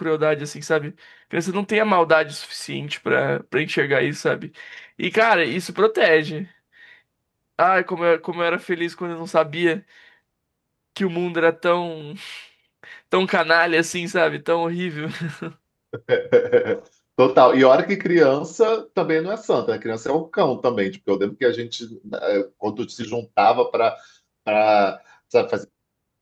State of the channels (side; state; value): both; identical; correlation 1.00